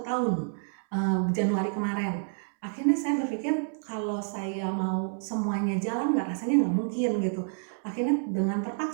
tahun, Januari kemarin. Akhirnya saya berpikir kalau saya mau semuanya jalan rasanya nggak mungkin gitu. Akhirnya dengan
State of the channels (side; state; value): left; silent; 59 dB below the other